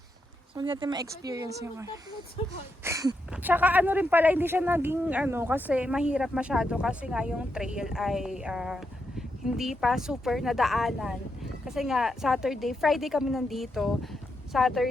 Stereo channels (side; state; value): both; normal; correlation 0.83